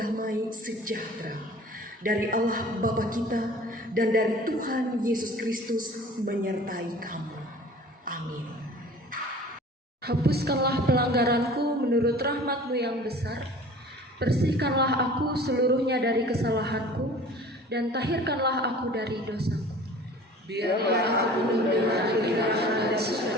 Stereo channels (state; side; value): normal; both; correlation 0.45